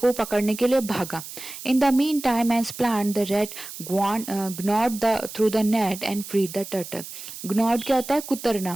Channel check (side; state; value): right; noise; hiss, 12 dB below the sound